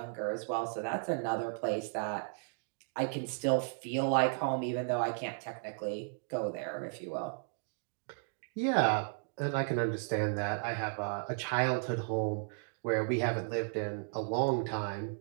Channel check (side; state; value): left; silent; 55 dB below the other